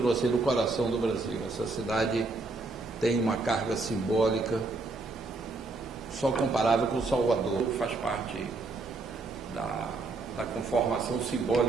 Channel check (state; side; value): quieter; left; 3.5 dB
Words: sendo o coração do Brasil. Essa cidade tem uma carga simbólica só comparável com Salvador. Faz parte da conformação